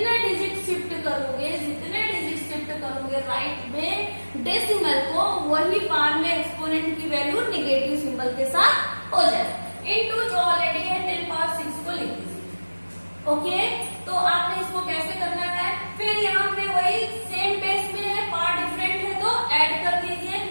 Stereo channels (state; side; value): inverted; both; correlation -1.00